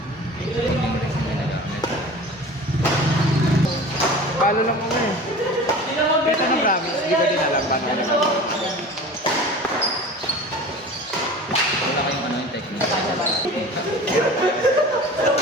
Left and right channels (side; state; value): both; normal; correlation 0.38